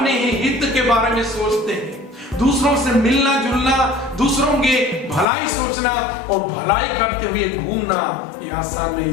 ही हित के बारे में सोचते हैं। दूसरों से मिलना जुलना, दूसरों के भलाई सोचना और भलाई करते हुए घूमना ये आसान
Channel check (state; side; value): drops out; right; at 5.3 s